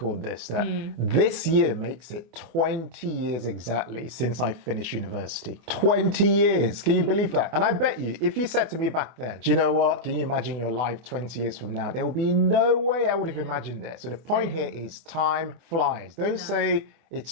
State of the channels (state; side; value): late; left; 24 ms